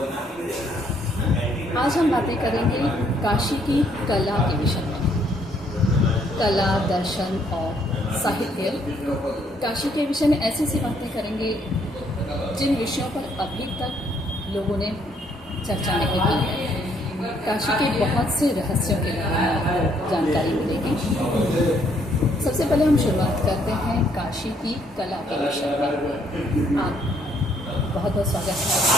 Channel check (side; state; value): both; normal; correlation 0.68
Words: आज हम बातें करेंगे काशी की कला के विषय में। कला, दर्शन और साहित्य। काशी के विषय में ऐसी सी बातें करेंगे जिन विषयों पर अभी तक लोगों ने चर्चा नहीं की है। काशी के बहुत से रहस्यों के बारे में आपको जानकारी मिलेगी। सबसे पहले हम शुरुआत करते हैं काशी की कला के विषय में। आप बहुत बहुत स्वागत है